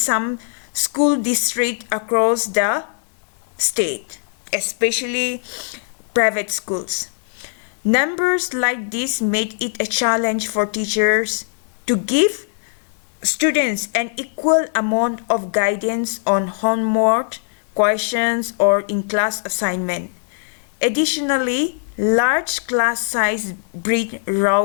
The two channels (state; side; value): silent; right; digital silence